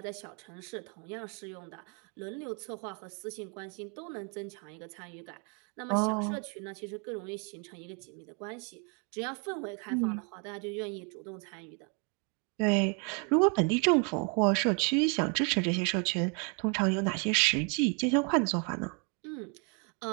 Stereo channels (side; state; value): left; quieter; 36.5 dB